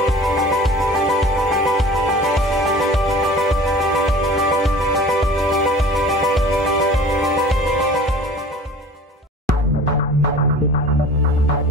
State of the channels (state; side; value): normal; both; correlation 0.43